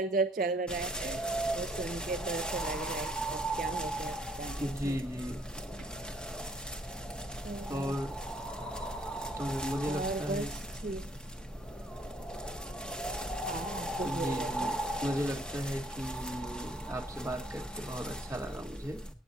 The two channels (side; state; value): both; normal; correlation 0.64